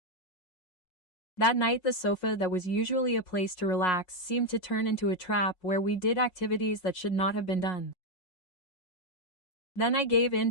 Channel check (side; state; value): right; late; 5.5 ms